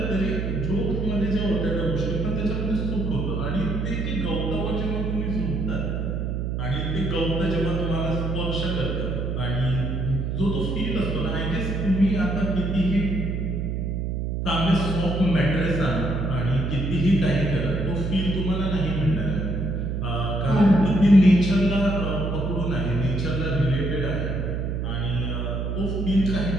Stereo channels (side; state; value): right; noise; hum, 1 dB below the sound